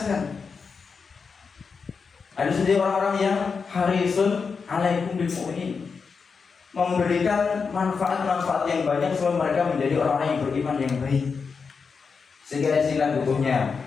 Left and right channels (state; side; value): quieter; right; 5.4 dB